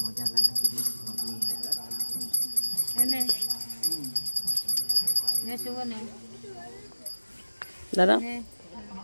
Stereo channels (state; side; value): inverted; both; correlation -1.00